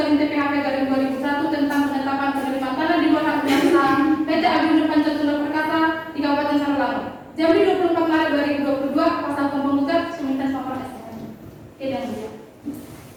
TPHP garing 2001 tentang penetapan penerimaan tanah di bawah hak guna usaha PT Agrindo Pancatula Perkasa di Kabupaten Sarolangun. Jambi 24 Maret 2022, kuasa hukum penggugat Suminten Sopor STM. Oke, dan ya.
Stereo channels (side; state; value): both; identical; correlation 1.00